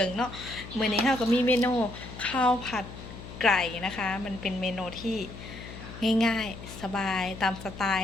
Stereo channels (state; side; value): noise; left; hum, 13 dB below the sound